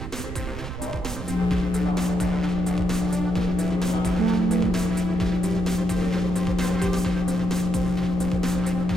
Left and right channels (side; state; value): right; noise; rumble, 8 dB below the sound